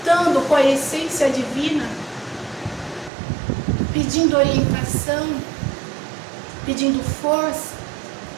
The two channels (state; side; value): drops out; left; at 3.1 s